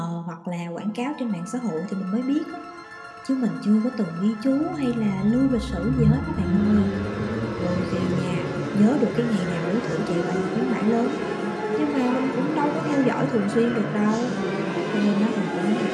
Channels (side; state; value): both; identical; correlation 1.00